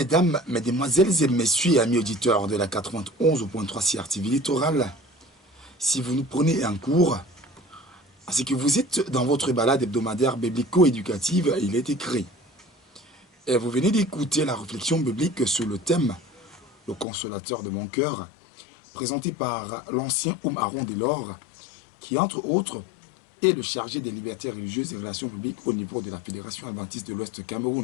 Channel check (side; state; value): right; drops out; at 17.1 s